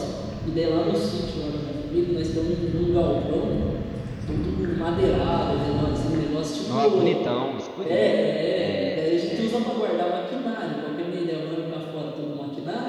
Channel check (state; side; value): identical; both; correlation 1.00